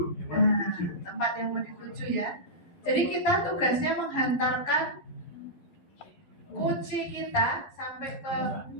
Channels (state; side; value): late; right; 11 ms